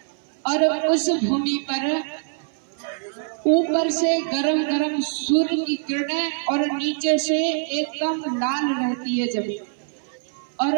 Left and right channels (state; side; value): silent; left; 60 dB below the other